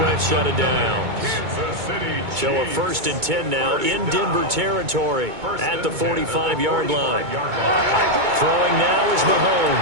set of downs. So a 1st and 10 now in Denver territory at the 45-yard line. Throwing now is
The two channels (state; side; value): late; left; 2.2 ms